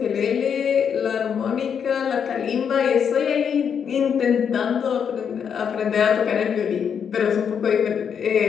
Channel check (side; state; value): right; quieter; 7.4 dB